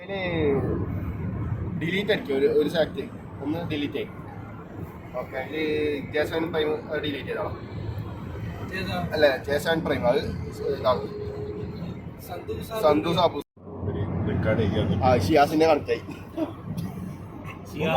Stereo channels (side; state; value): both; identical; correlation 1.00